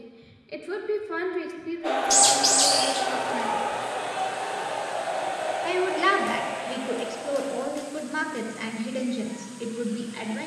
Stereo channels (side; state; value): both; identical; correlation 1.00